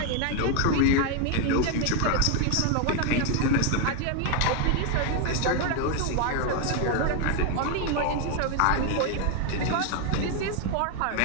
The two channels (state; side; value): different; both; correlation 0.01